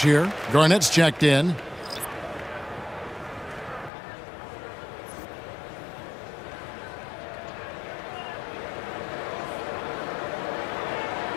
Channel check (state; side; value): drops out; right; at 3.9 s